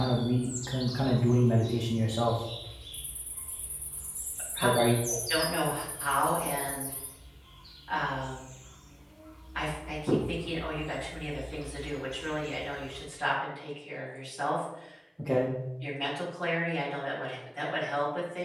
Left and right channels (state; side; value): identical; both; correlation 1.00